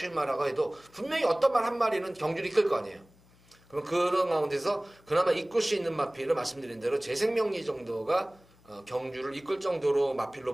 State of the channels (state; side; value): noise; left; hum, 28 dB below the sound